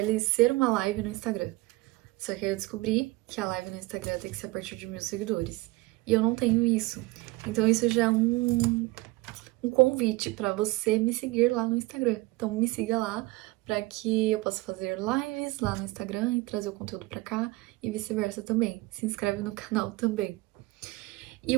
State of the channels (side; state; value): left; quieter; 21.0 dB